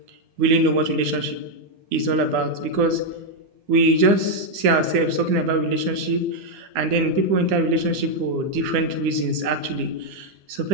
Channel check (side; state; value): left; late; 9.8 ms